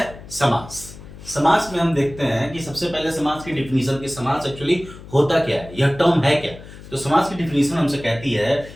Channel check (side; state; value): left; noise; hum, 16 dB below the sound